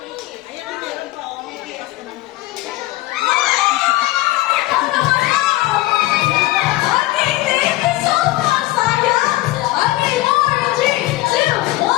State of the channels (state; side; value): quieter; right; 17.8 dB